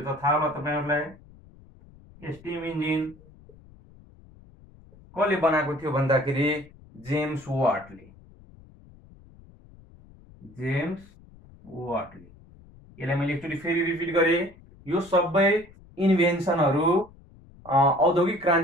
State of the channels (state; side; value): noise; left; rumble, 24 dB below the sound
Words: त थाहा होला तपाईहरुलाई, स्टिम इन्जिन कसले बनाएको थियो भन्दाखेरि जेम्स वाटले, जेम्स वाटले। यसलाई मैले एकचोटि फेरि रिपिट गरे, यो सबै इन्भेन्सनहरु औद्योगिक